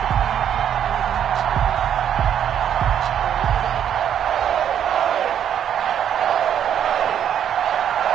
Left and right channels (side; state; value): left; quieter; 9.4 dB